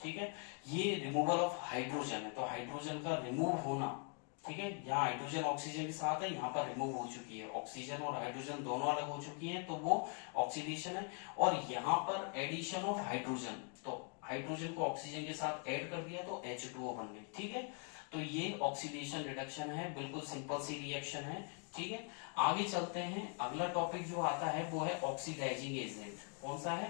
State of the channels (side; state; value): right; quieter; 39.8 dB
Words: ठीक है, ये रिमूवल ऑफ हाइड्रोजन है, तो हाइड्रोजन का रिमूव होना, ठीक है, यहाँ हाइड्रोजन ऑक्सीजन के साथ है, यहाँ पर रिमूव हो चुकी है, ऑक्सीजन और हाइड्रोजन दोनों अलग हो चुकी हैं, तो वो ऑक्सीडेशन है। और यहाँ पर एडिशन ऑफ हाइड्रोजन, तो हाइड्रोजन को ऑक्सीजन के साथ ऐड कर दिया तो H2O बन गई। ठीक है, तो ये ऑक्सीडेशन रिडक्शन है, बिल्कुल सिंपल सी रिएक्शन है। ठीक है, आगे चलते हैं, अगला टॉपिक जो आता है वो है ऑक्सीडाइजिंग एजेंट। कौन सा